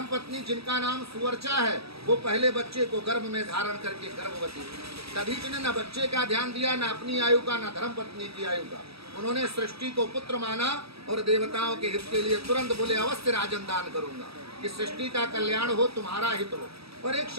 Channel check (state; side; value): late; left; 0.77 ms